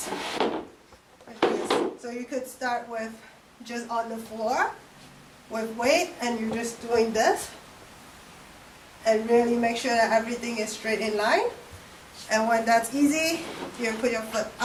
Like this. So you could start with just on the floor with weight, and you're just doing this. And really make sure that everything is straight in line. And when that's easy, you put your foot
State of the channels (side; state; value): both; identical; correlation 1.00